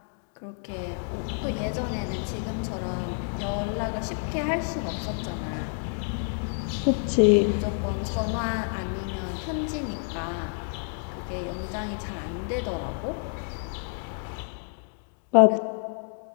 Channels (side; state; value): right; silent; 59 dB below the other